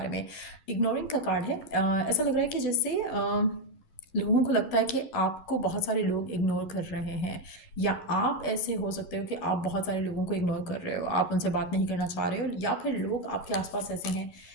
में। इग्नोरिंग का कार्ड है। ऐसा लग रहा है कि जैसे लोगों को लगता है कि आपको बहुत सारे लोग इग्नोर कर रहे हैं, या आप ऐसे हो सकते हो कि आप बहुत सारे लोगों को इग्नोर कर रहे हो, आप उनसे बात नहीं करना चाह रहे हो, या फिर लोग आपके आसपास ऐसे हैं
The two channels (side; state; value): right; late; 11 ms